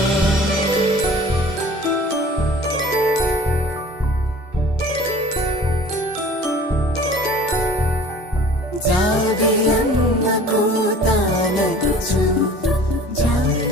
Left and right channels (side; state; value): both; normal; correlation 0.46